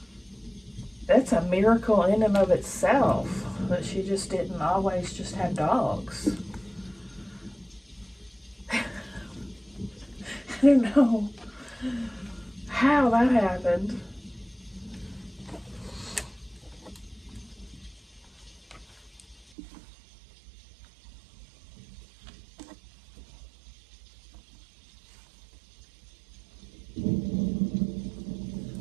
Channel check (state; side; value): drops out; left; at 19.5 s